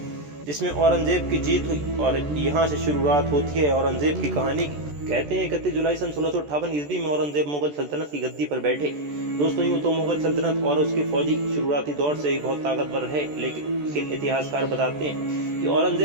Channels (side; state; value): left; late; 14 ms